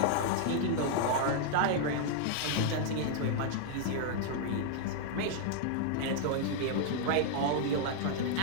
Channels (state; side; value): different; both; correlation -0.01